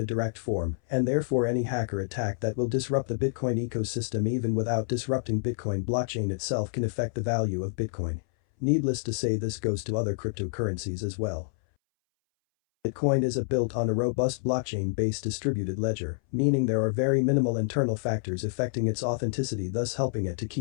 direct form, and therefore any hacker attack that will disrupt the Bitcoin ecosystem even without disrupting Bitcoin blockchain itself can affect the value of Bitcoin. Needless to say, this goes to other cryptocurrencies as well. Bitcoin is built on a robust blockchain-based distributed ledger, meaning there are very minimal internal factors affecting its authenticity, thus helping it to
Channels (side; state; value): right; silent; 59 dB below the other